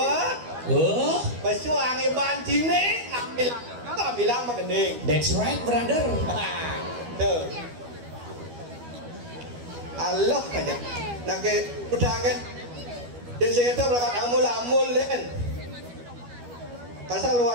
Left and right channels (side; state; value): left; late; 12 ms